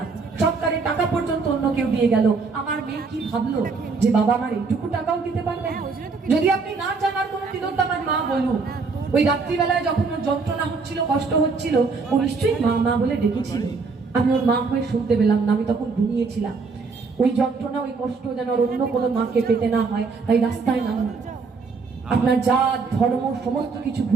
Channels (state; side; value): quieter; left; 4.6 dB